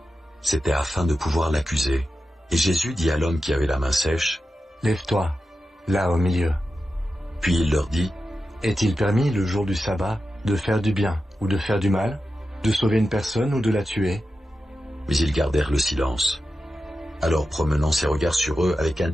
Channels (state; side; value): normal; both; correlation 0.91